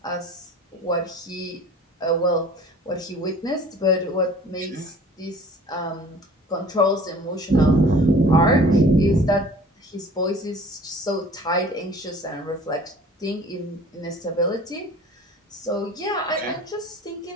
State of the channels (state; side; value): normal; both; correlation 0.47